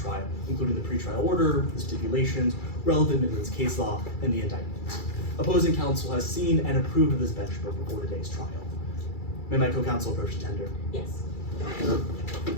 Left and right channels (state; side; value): late; right; 2.3 ms